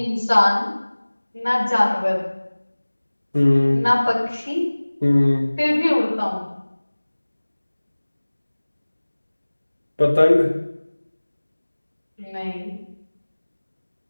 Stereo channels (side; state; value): both; inverted; correlation -1.00